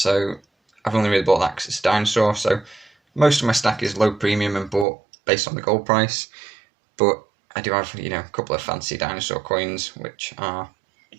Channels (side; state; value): left; drops out; at 4.9 s